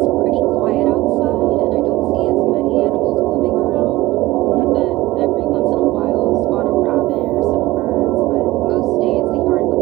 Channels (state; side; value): quieter; left; 18.4 dB